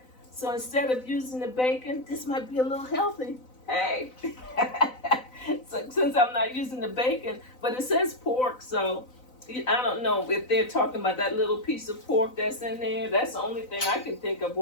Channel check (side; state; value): right; late; 4.0 ms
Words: So instead of using the bacon, this might be a little healthy. Hey, so since I'm not using the bacon, but it says pork, so I don't know if they're talking about that little piece of pork that's in there. That's the only thing I can think of